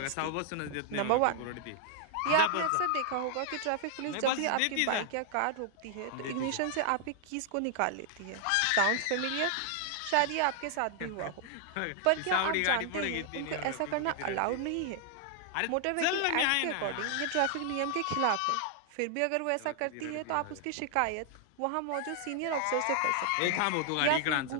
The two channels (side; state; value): both; different; correlation 0.00